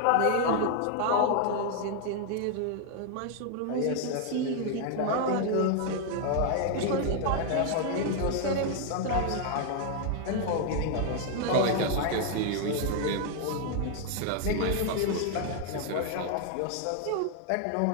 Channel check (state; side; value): different; both; correlation 0.00